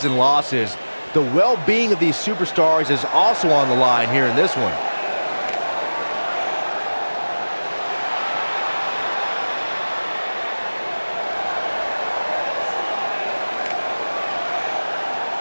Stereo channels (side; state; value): both; inverted; correlation -1.00